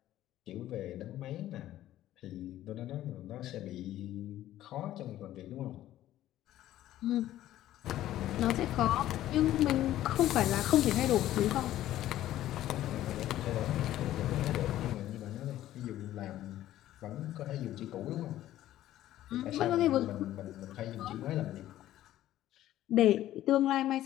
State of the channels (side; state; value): right; quieter; 13.6 dB